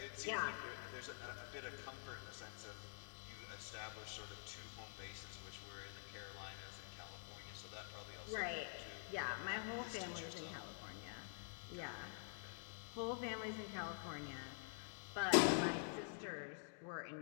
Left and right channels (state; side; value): silent; right; digital silence